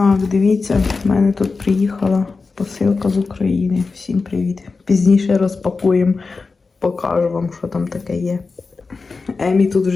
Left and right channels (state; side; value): quieter; right; 4.3 dB